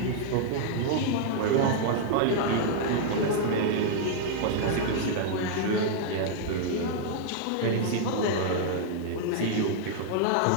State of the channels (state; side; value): different; both; correlation -0.01